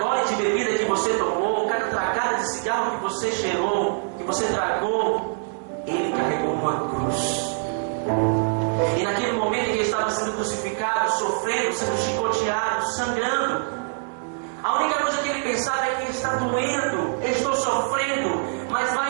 gole de bebida que você tomou, cada tragada de cigarro que você cheirou, que você tragou, Ele carregou uma cruz. E naquele momento em que Ele estava sendo crucificado, sofrendo, sendo chicoteado, sangrando, a única coisa que Ele pensava é que está doendo, eu estou sofrendo, mas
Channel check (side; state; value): left; silent; 62 dB below the other